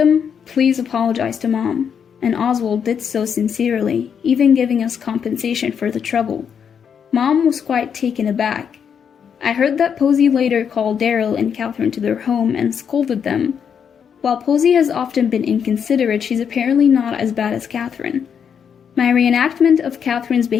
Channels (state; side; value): quieter; right; 7.4 dB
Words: please apologize to Mom, and Oswald did so sincerely, even giving us compensation for the trouble. Mom was quite taken aback. I heard that Posey later called Daryl and Catherine to their home and scolded them. While Posey has often been inconsiderate, she's apparently not as bad as Catherine. My reenactment of Catherine's